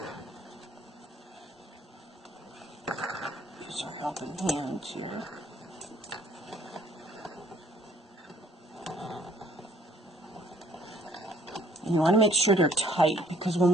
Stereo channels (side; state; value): both; normal; correlation 0.61